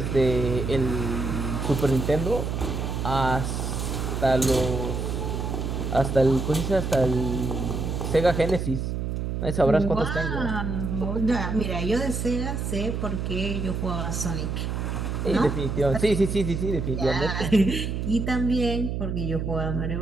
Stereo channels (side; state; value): right; noise; hum, 2 dB below the sound